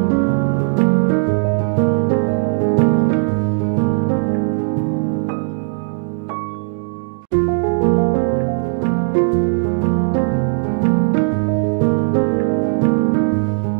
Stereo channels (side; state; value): left; silent; 68 dB below the other